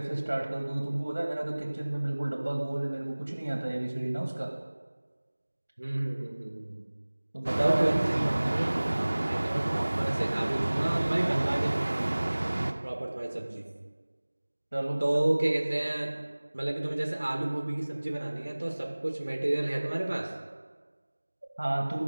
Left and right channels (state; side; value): inverted; both; correlation -1.00